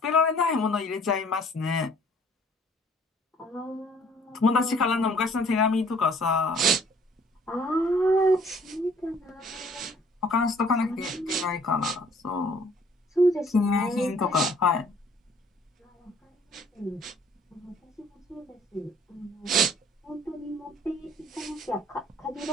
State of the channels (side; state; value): both; normal; correlation 0.57